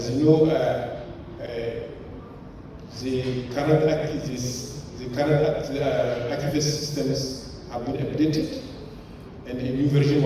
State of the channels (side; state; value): both; identical; correlation 1.00